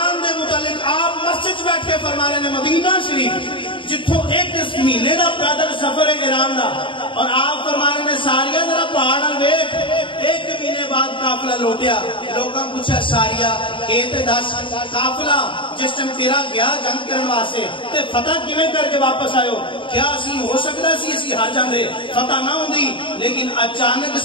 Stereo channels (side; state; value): right; late; 0.24 ms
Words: دے متعلق آپ مسجد بیٹھ کے فرما رہے ہیں مدینہ شریف جتھوں 1 مہینے دا پیدل سفر ہے ایران دا, اور آپ فرما رہے ہیں ساریا ذرا پہاڑ نال ویکھ. 1 مہینے بعد قافلہ لوٹیا. لوکاں پوچھا ساریا اے تے دس قافلہ جس ٹائم تیرا گیا جنگ کرن واسطے تے فتح کیویں کر کے واپس آئے ہو؟ کیا اسی ہو سکدا سی اسی ہار جاندے, فتح نہ ہوندی, لیکن اچانک